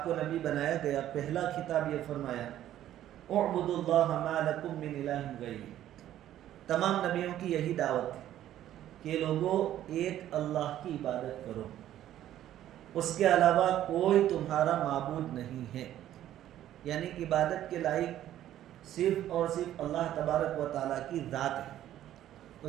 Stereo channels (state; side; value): quieter; left; 12.3 dB